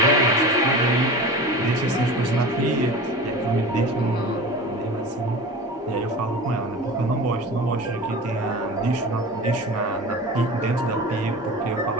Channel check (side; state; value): both; normal; correlation 0.34